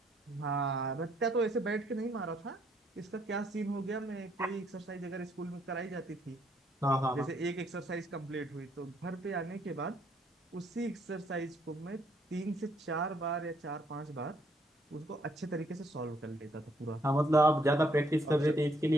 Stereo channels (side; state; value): both; normal; correlation 0.70